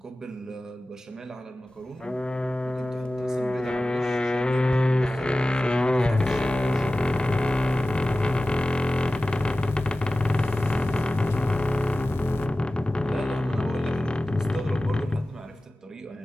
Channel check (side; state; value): both; normal; correlation 0.96